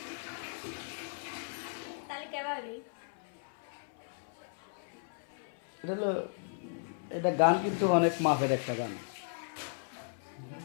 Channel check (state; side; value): silent; right; 54 dB below the other